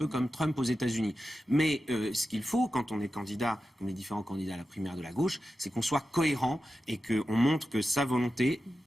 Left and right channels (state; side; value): normal; both; correlation 0.92